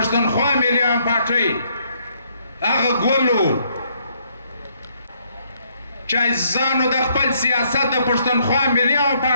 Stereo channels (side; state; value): both; inverted; correlation -0.70